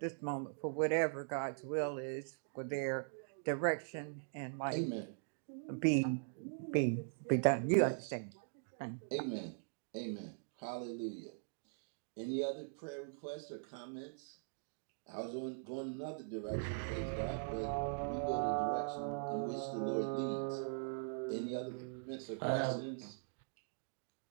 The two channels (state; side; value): silent; left; digital silence